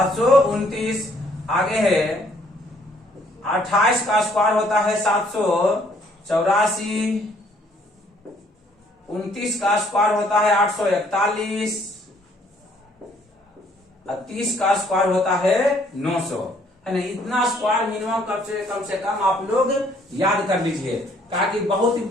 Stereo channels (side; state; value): both; normal; correlation 0.64